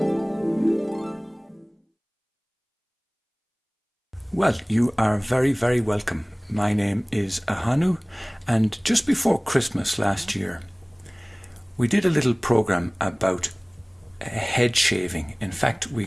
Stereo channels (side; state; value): both; identical; correlation 1.00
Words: Well, you are very, very welcome. My name is Ahonu, and just before Christmas last year, we did a little program about head shaving. In fact, we